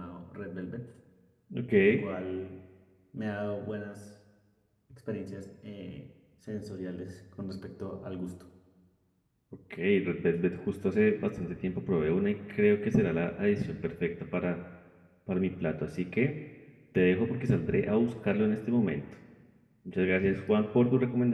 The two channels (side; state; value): both; identical; correlation 1.00